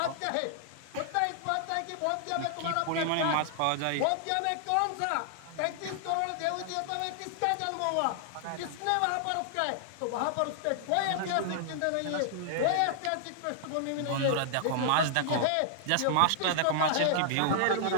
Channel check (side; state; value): both; different; correlation -0.01